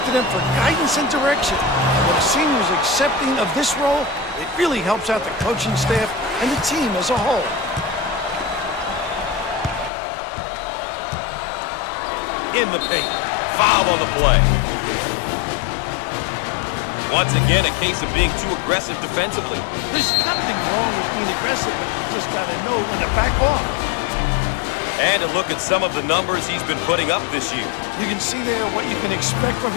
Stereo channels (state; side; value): drops out; right; at 9.9 s